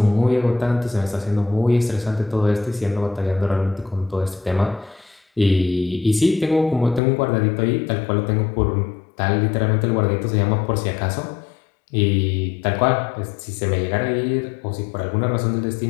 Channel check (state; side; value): drops out; right; at 7.0 s